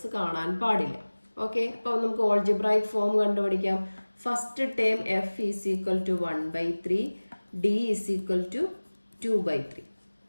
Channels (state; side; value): inverted; both; correlation -1.00